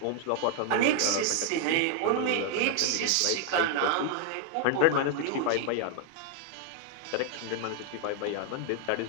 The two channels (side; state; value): both; different; correlation 0.00